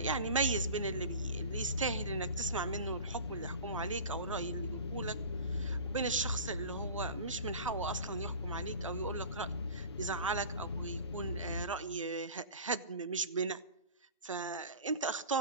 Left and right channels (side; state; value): both; inverted; correlation -0.37